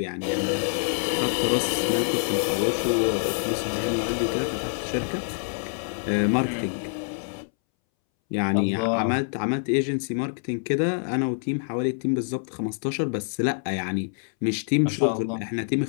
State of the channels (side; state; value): right; silent; 61 dB below the other